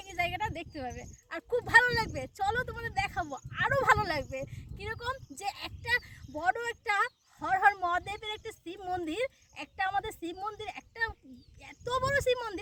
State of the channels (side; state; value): both; identical; correlation 1.00